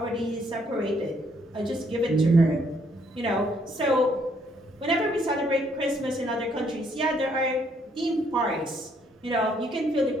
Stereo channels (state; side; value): normal; both; correlation 0.69